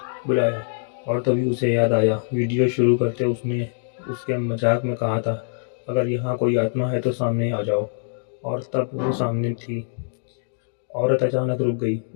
बुलाया? और तभी उसे याद आया, वीडियो शुरू करते उसने उसके मजाक में कहा था, अगर यहाँ कोई आत्मा है तो सामने आ जाओ। और तब वो सामने थी। औरत अचानक रुक गई।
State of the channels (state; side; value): silent; right; digital silence